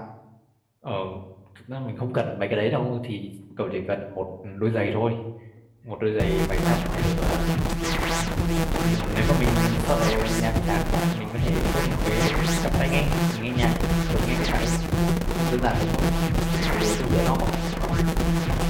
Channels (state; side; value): identical; both; correlation 1.00